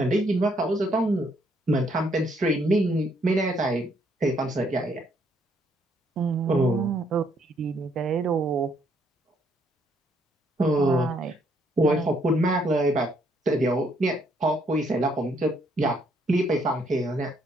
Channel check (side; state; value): both; normal; correlation 0.70